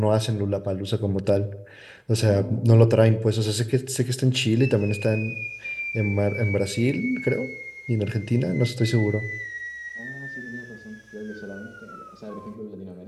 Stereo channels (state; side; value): identical; both; correlation 1.00